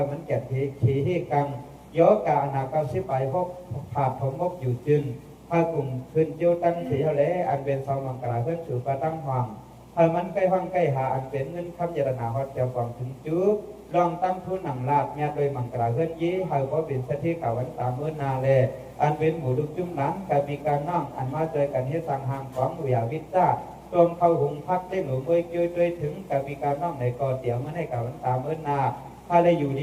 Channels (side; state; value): both; identical; correlation 1.00